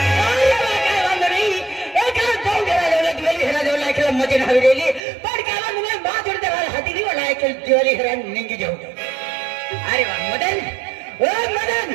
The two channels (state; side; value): drops out; left; at 5.0 s